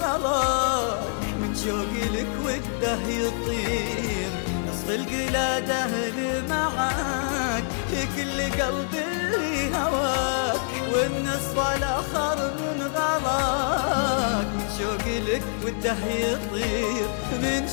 من شوقي لك وده يطير. نصف القلاد أهلي معاك، هي كل قلبي اللي هواك، والنصف الآخر من غلاك، من شوقي لك وده يطير، من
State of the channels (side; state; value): right; silent; digital silence